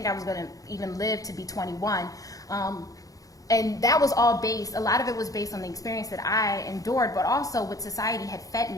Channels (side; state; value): right; late; 0.17 ms